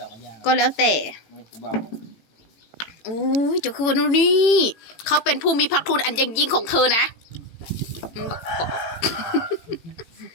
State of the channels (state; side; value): late; right; 18 ms